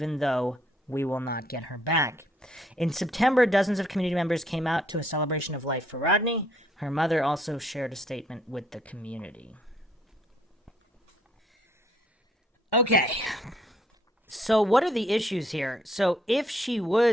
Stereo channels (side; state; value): both; normal; correlation 0.66